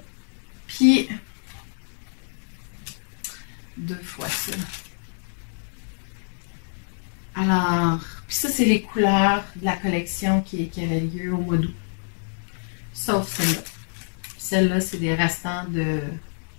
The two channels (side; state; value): right; silent; digital silence